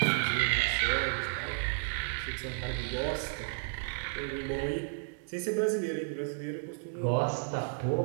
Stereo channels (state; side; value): silent; left; digital silence